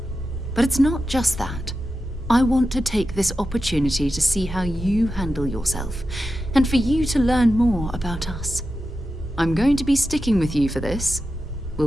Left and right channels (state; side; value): normal; both; correlation 0.91